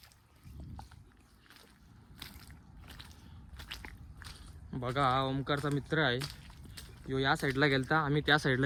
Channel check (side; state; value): both; identical; correlation 1.00